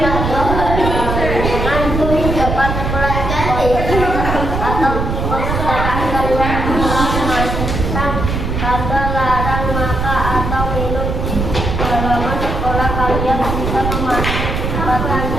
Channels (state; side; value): noise; right; rumble, 2 dB below the sound